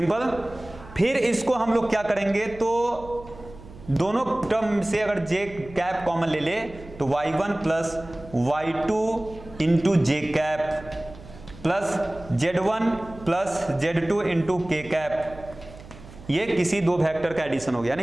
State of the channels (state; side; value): noise; right; hum, 18 dB below the sound